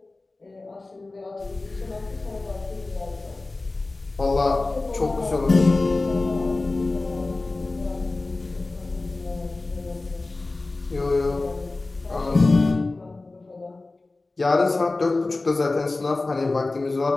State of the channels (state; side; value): quieter; right; 3.3 dB